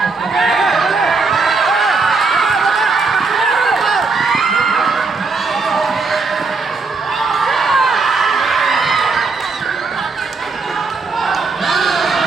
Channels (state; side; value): quieter; left; 4.3 dB